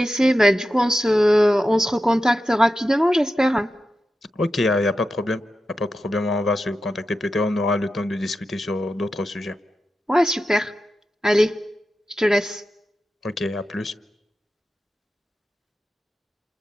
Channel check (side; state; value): both; normal; correlation 0.91